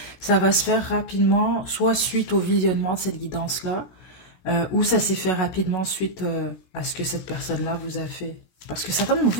Ça va se faire rapidement, soit suite au visionnement de cette guidance-là, ou ça s'est fait rapidement suite à ce que cette personne-là vous a fait. Parce que certains d'entre vous,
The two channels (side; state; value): right; late; 17 ms